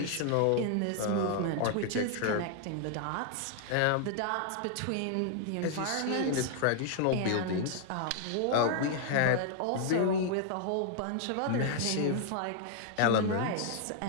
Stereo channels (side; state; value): both; different; correlation 0.00